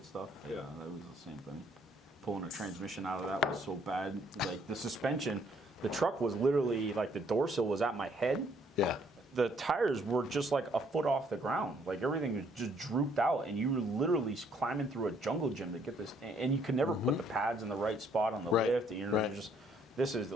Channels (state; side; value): normal; both; correlation 0.66